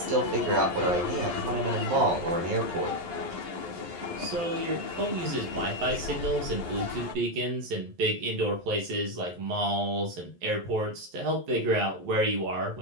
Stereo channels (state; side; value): late; left; 11 ms